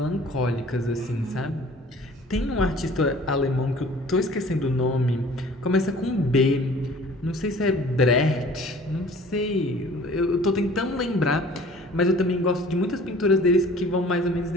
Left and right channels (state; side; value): normal; both; correlation 0.49